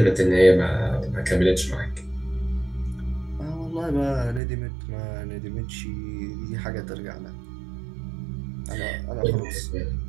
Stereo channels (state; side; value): drops out; left; at 4.4 s